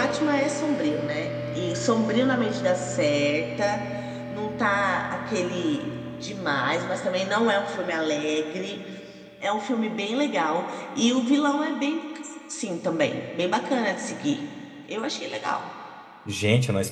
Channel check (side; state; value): both; identical; correlation 1.00